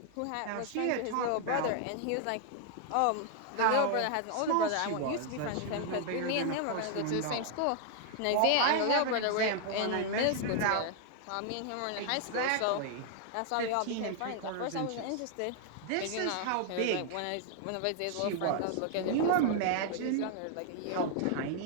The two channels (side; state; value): both; different; correlation 0.00